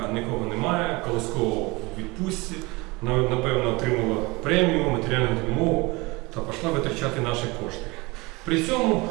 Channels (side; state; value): left; quieter; 24.4 dB